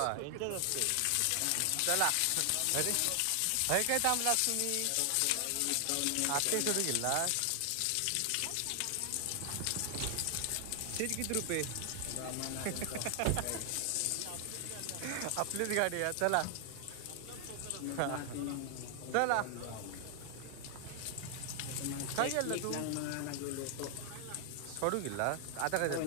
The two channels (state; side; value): different; both; correlation 0.00